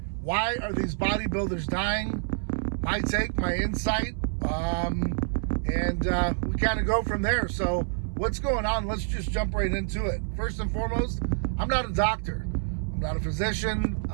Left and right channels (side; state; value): left; silent; 60 dB below the other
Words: why are these bodybuilders dying? My take, my insight, and we kind of go from there. So what's going on? Let's just jump right into it. First and foremost, I'm not a doctor. I'm not a physician.